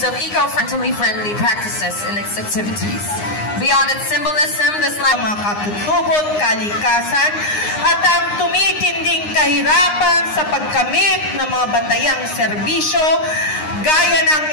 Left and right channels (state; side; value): late; right; 9.7 ms